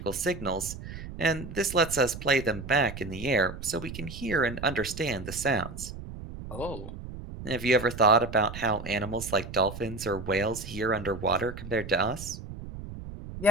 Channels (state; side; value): noise; right; rumble, 11 dB below the sound